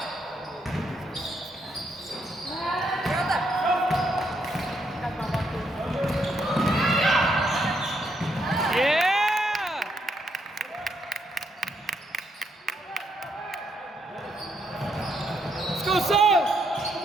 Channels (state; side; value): normal; both; correlation 0.76